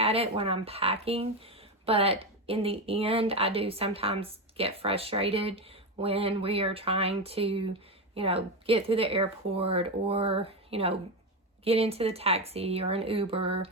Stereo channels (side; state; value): both; normal; correlation 0.14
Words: it when I'm packing. But in the end, I do sometimes get frustrated when we are trying to, you know, get through the airport, or, you know, get into the taxi or an Uber,